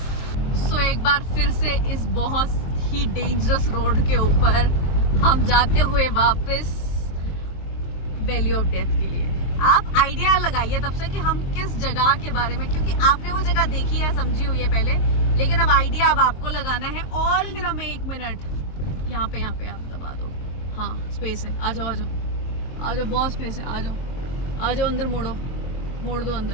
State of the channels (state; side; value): late; right; 23 ms